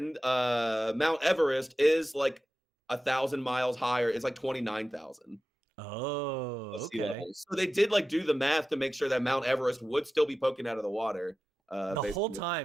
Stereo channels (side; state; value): both; normal; correlation 0.93